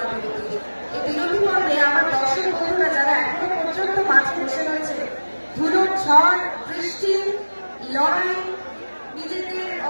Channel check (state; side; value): inverted; both; correlation -1.00